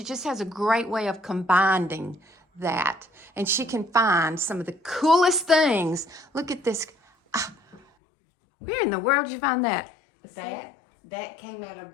just has a great way of combining that. And she can find some of the coolest things. Look at this. Where in the world did you find that? That came out of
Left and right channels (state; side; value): drops out; right; at 7.8 s